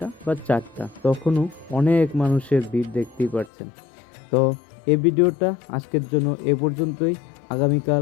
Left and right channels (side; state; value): right; drops out; at 3.5 s